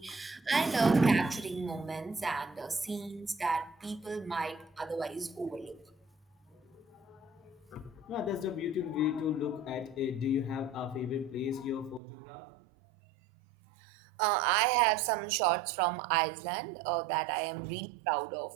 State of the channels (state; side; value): drops out; left; at 12.0 s